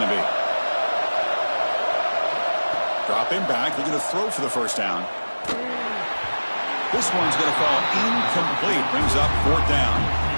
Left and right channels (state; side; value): inverted; both; correlation -1.00